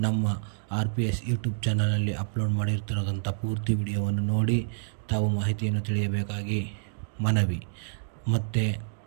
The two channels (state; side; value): silent; left; digital silence